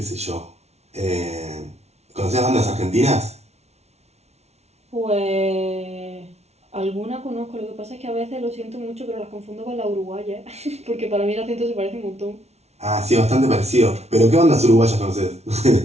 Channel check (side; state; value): left; late; 0.31 ms